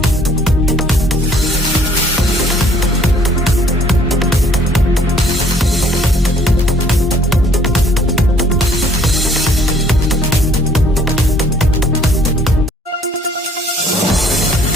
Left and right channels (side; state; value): both; normal; correlation 0.59